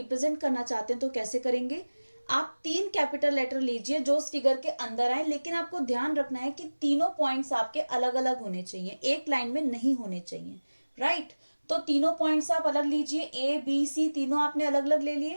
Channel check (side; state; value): both; inverted; correlation -1.00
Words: करना चाहते हैं तो कैसे करेंगे। आप 3 कैपिटल लेटर लीजिए जो उस फिगर के अंदर आए, लेकिन आपको ध्यान रखना है कि तीनों पॉइंट्स आपके अलग अलग होने चाहिए, एक लाइन में नहीं होने चाहिए, राइट। तो तीनों पॉइंट्स आप अलग लीजिए, ए बी सी तीनों आपने अलग अलग ले